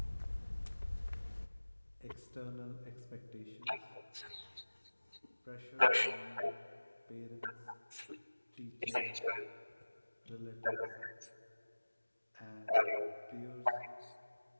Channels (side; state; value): both; inverted; correlation -1.00